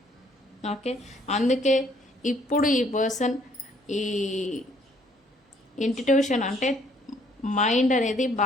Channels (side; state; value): both; normal; correlation 0.63